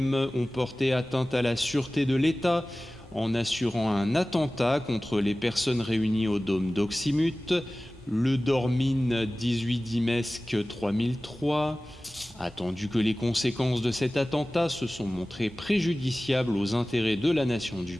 ont porté atteinte à la sûreté de l'État en assurant un attentat contre les personnes réunies au dôme d'Oxymute, le Dormine 18 Dimesque 3003, attendu que les conséquences de cet attentat se sont montrées préjudiciables aux intérêts de la nation du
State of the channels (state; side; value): normal; both; correlation 0.97